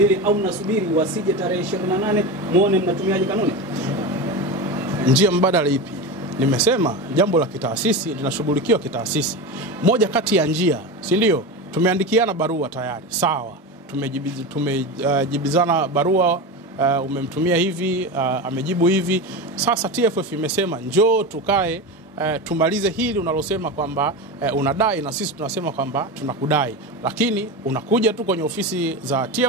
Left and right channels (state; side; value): normal; both; correlation 0.23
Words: au mnasubiri wasije tarehe 28 muone mnatumiaje kanuni? Njia mbadala ipi? Nimesema jambo la kitaasisi linashughulikiwa kitaasisi. Moja kati ya njia, si ndio? Tumeandikiana barua tayari, sawa. Tumejibizana barua, umemtumia hivi, amejibu hivi. Sasa TFF imesema njoo tukae tumalize hili unalosema kwamba unadai, na sisi tunasema kwamba tunakudai, lakini unakuja tu kwenye ofisi za